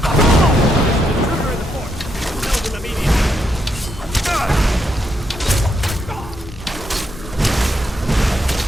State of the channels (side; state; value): both; normal; correlation 0.79